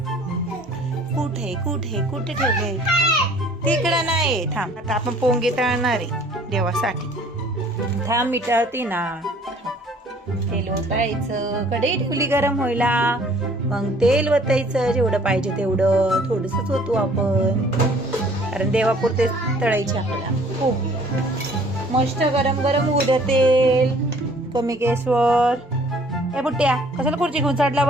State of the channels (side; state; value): both; normal; correlation 0.55